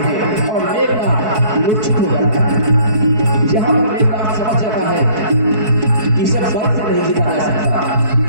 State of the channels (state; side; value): late; left; 4.6 ms